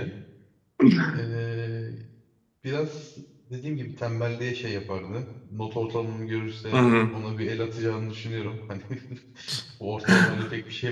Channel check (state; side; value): identical; both; correlation 1.00